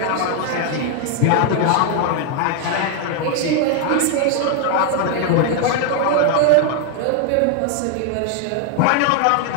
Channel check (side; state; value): both; different; correlation 0.00